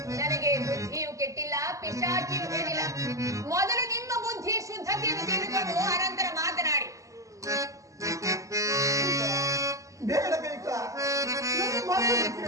ನನಗೆ ಬುದ್ಧಿಯು ಕೆಟ್ಟಿಲ್ಲ, ಪಿಶಾಚಿಯು ಹೇಳಿಲ್ಲ. ಮೊದಲು ನಿಮ್ಮ ಬುದ್ಧಿ ಶುದ್ಧತೆಯನ್ನು ತಿಳಿದುಕೊಂಡು ಅನಂತರ ಮಾತನಾಡಿ. ಬೇಡ ಕೈಕ, ನನ್ನ ಮಾತನ್ನು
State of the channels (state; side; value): late; left; 0.16 ms